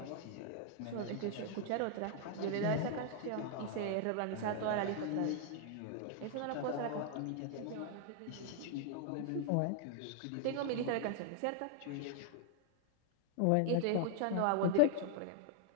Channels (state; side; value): different; both; correlation 0.00